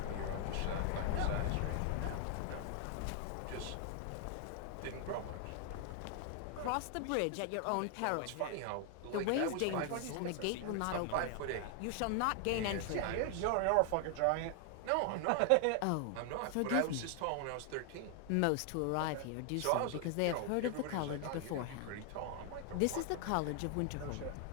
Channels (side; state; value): both; different; correlation 0.00